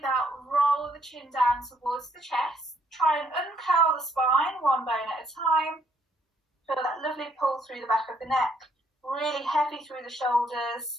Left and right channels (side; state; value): both; normal; correlation 0.69